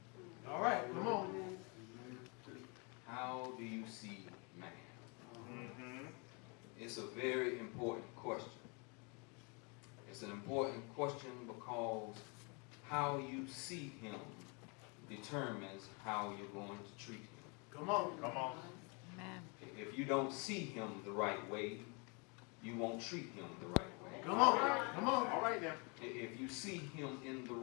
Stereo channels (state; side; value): quieter; right; 32.8 dB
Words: All right, come on. How do you see man? It's a very important question. It's an important question because how you see him determines how you're going to treat him. Come on. Come on. Amen. If you don't see him the right way, you won't treat him the right way. Come on. Come on. All right now. If you see him in the